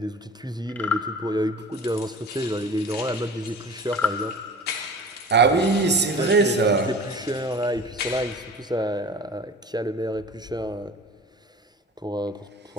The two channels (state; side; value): normal; both; correlation 0.39